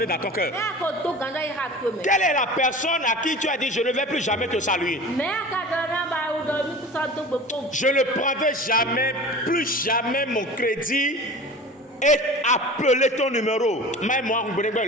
dans ton cœur? Quelle est la personne à qui tu as dit je ne vais plus jamais te saluer? Je ne prendrai jamais, plus jamais mon crédit et appeler ton numéro.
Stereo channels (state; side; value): normal; both; correlation 0.37